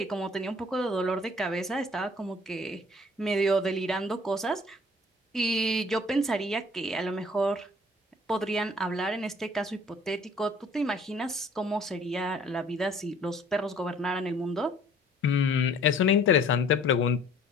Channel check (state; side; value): normal; both; correlation 0.54